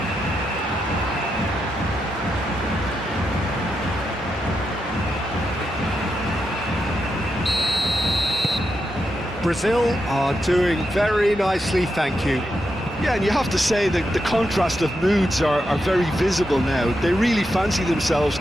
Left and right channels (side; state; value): both; normal; correlation 0.85